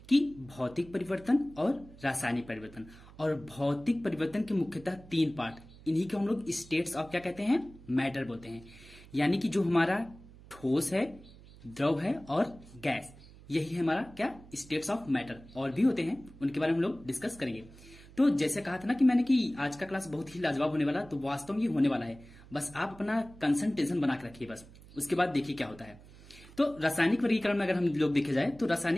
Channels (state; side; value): noise; right; hum, 21 dB below the sound